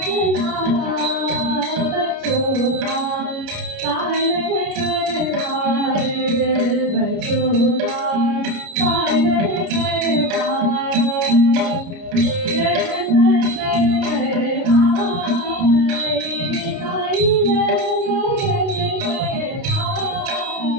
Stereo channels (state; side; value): late; left; 30 ms